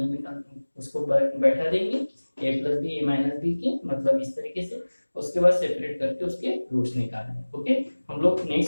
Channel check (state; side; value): inverted; both; correlation -1.00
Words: में उसको बैठा देंगे a plus b a minus b के, मतलब इस तरीके से। उसके बाद सेपरेट करके उसके रूट्स निकालने हैं। ओके, हम लोग